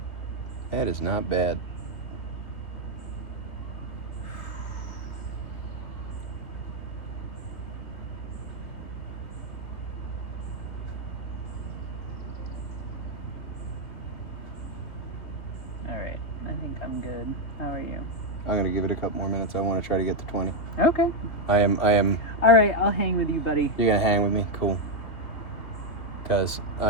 That is not bad. Alright, I think I'm good. How are you? I'm going to give it a couple more minutes. I want to try to get to 20. Okay. I am. Alright, I'll hang with you, buddy. You're going to hang with me? Cool. Because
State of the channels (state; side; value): late; right; 2.6 ms